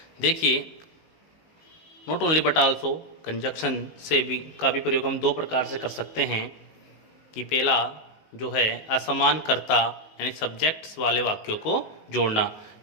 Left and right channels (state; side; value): late; right; 19 ms